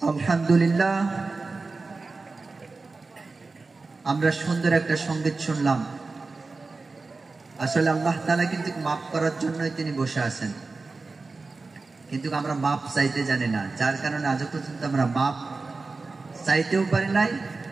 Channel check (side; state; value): left; quieter; 3.8 dB